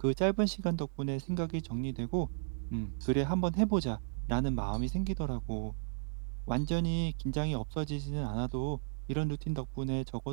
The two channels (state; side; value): silent; left; digital silence